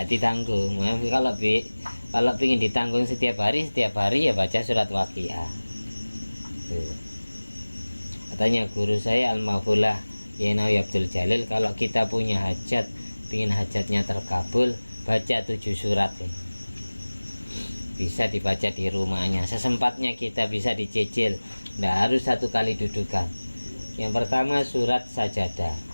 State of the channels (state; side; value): inverted; both; correlation -1.00